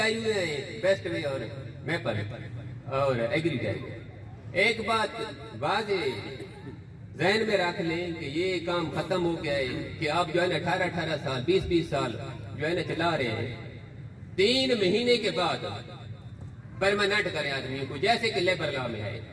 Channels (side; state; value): both; identical; correlation 1.00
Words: ہوئے ہیں بیسٹ وے اور میپل, اور ایگریٹیک۔ ایک بات واضح ذہن میں رکھ لیں کہ یہ کام ختم ہو گیا ہے کہ آپ جو ہے نا 18 سال 20 سال جو ہے نا چلا رہے ہیں، 3 مہینے کے بعد پرماننٹ کریں آدمیوں کو، جیسے کہ لیبر لا میں ہے۔